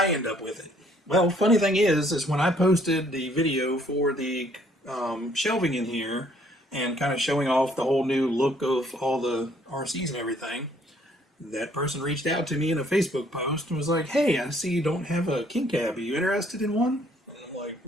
end up with it? Well, funny thing is when I posted the video for the shelving in here and kind of showing off the whole new look of all the RCs and everything, that person reached out to me in a Facebook post and was like, "Hey, I see you don't have a King Cab. Are you interested in one?" And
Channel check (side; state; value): both; normal; correlation 0.63